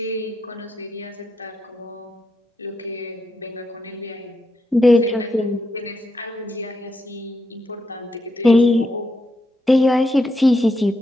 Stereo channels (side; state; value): both; normal; correlation 0.82